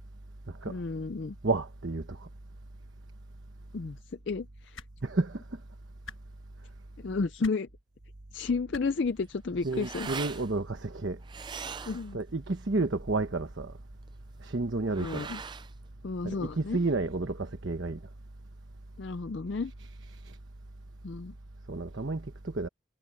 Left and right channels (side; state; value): both; normal; correlation 0.39